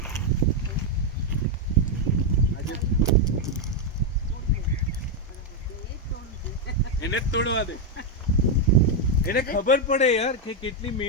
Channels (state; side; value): normal; both; correlation 0.02